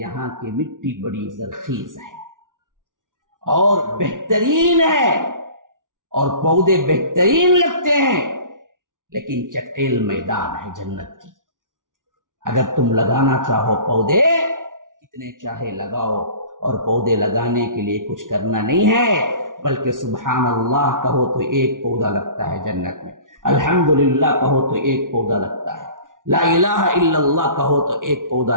کی مٹی بڑی زرخیز ہے اور بہترین ہے اور پودے بہترین لگتے ہیں، لیکن چٹیل میدان ہے جنت کی۔ اگر تم لگانا چاہو پودے، کتنے چاہے لگاؤ، اور پودے لگانے کے لیے کچھ کرنا نہیں ہے، بلکہ سبحان اللہ کہو تو ایک پودا لگتا ہے جنت میں، الحمدللہ کہو تو ایک پودا لگتا ہے، لا الہ الا اللہ کہو تو ایک پودا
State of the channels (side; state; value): left; late; 0.88 ms